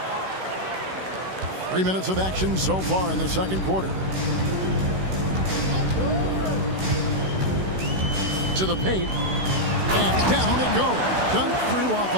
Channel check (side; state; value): left; late; 16 ms